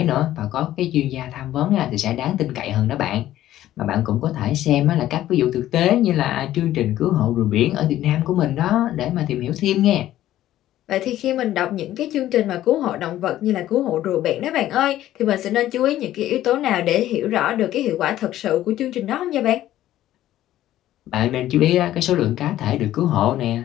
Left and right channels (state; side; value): quieter; right; 13.5 dB